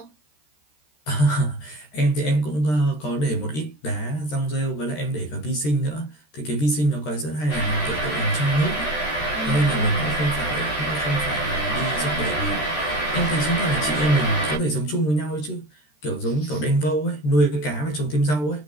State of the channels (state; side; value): late; right; 13 ms